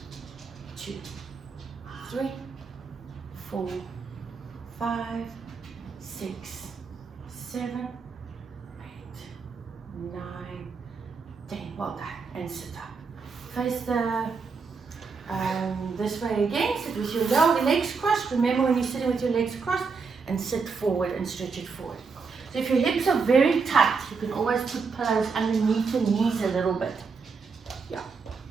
2, 3, 4, 5, 6, 7, 8, 9, 10. Well done. And sit up. Face the this way again. Sit with your legs crossed. Remember when you're sitting with your legs crossed, and sit forward and stretch it forward. So if your hips are very tight, you can always put pillows underneath your knees a little bit. Yeah.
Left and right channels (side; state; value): left; quieter; 5.0 dB